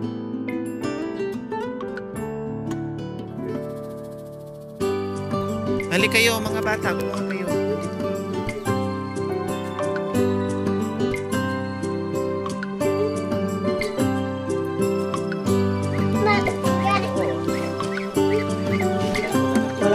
Halik kayo mga bata, kumuha kayo.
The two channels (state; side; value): identical; both; correlation 1.00